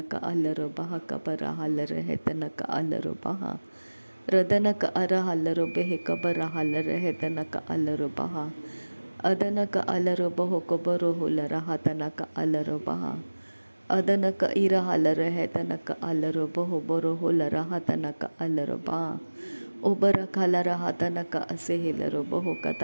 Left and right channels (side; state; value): both; inverted; correlation -1.00